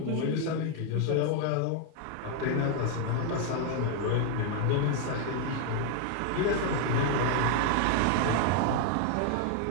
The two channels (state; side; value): different; both; correlation 0.00